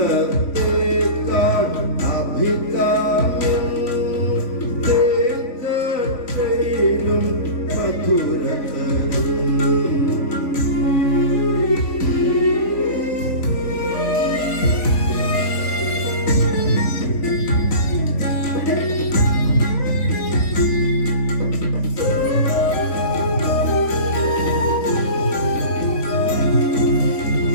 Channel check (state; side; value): late; right; 3.5 ms